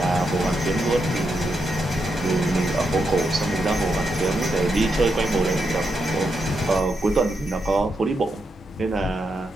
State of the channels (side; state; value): both; normal; correlation 0.83